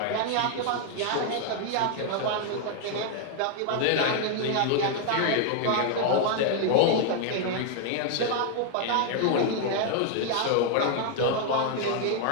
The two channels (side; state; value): both; different; correlation 0.00